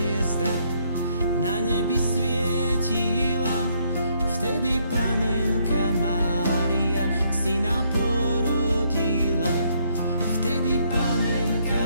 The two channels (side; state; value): both; inverted; correlation -0.70